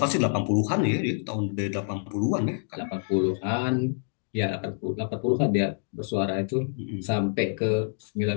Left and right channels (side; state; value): right; silent; digital silence